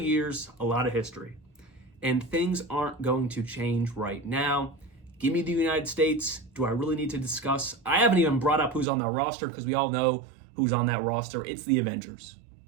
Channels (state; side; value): drops out; left; at 8.8 s